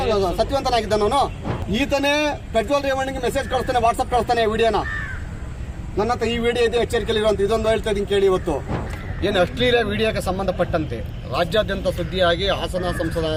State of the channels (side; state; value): both; identical; correlation 1.00